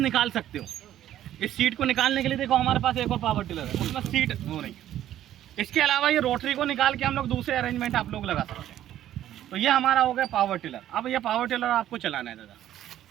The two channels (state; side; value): quieter; left; 12.2 dB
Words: सकते हो। इस सीट को निकालने के लिए देखो हमारे पास एक और पावर टिलर है, उसमें सीट हो रही है। इसके अलावा ये रोटरी को निकाल के हम लोग दूसरे अरेंजमेंट आप लोग लगा सकते हैं। तो ये हमारा हो गया पावर टिलर। अब ये पावर टिलर आपको चलाना है दादा,